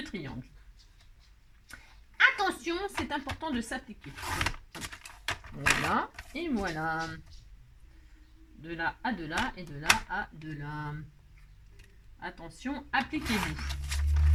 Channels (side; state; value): both; identical; correlation 1.00